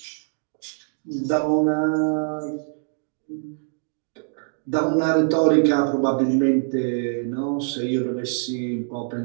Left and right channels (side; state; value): left; silent; digital silence